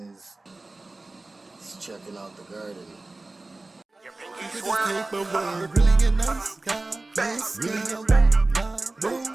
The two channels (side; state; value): left; quieter; 3.1 dB